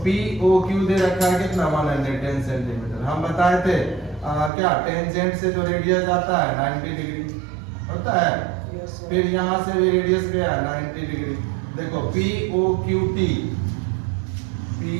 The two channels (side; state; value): left; drops out; at 4.5 s